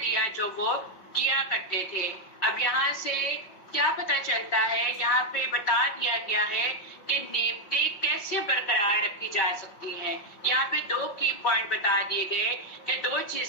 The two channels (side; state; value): right; late; 5.3 ms